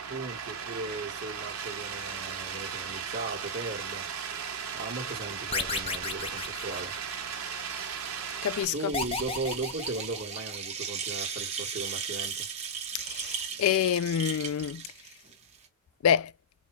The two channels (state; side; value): normal; both; correlation -0.10